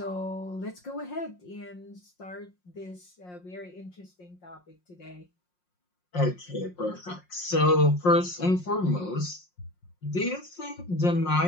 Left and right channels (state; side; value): late; right; 5.6 ms